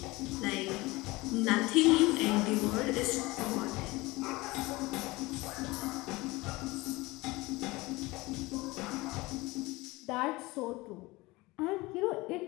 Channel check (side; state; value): right; quieter; 21.6 dB